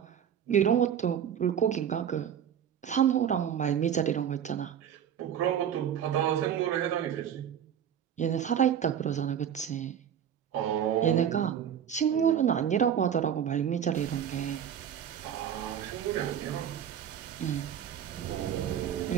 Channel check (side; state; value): left; quieter; 9.2 dB